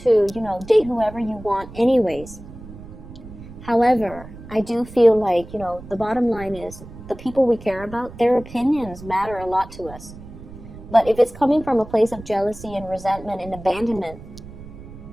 date whoever you want anyways. However, I do feel like, the bottom line is the people we care about, their opinions matter a lot to us. But if it's coming from a place of jealousy and resentment and abandonment,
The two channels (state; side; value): noise; right; rumble, 16 dB below the sound